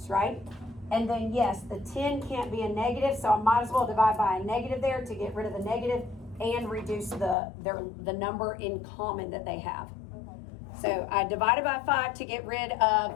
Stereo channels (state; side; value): drops out; right; at 7.4 s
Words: right? And then yes, the 10 can't be a negative, so I might as well divide by a negative there to get rid of the negative and reduce the number in common that they have. So I divided by 5 to get rid